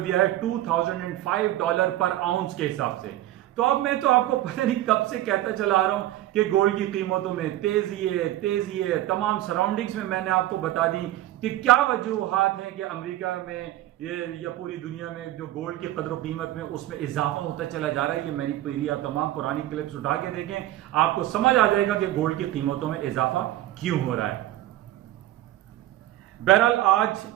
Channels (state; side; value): quieter; left; 14.6 dB